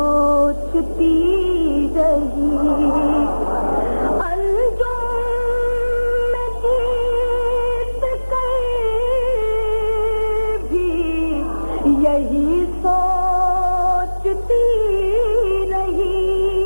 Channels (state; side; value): inverted; both; correlation -1.00